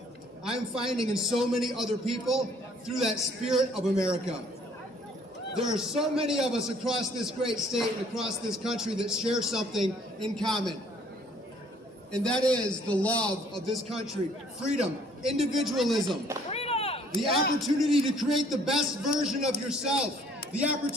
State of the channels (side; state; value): both; normal; correlation 0.60